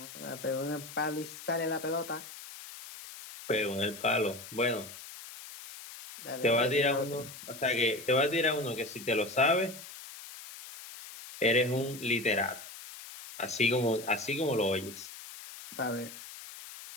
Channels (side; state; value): left; noise; hiss, 14 dB below the sound